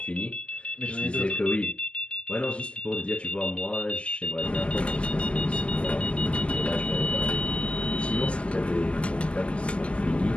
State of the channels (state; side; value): late; right; 0.055 ms